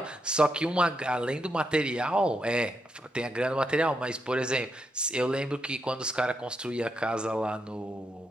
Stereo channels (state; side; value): normal; both; correlation 0.82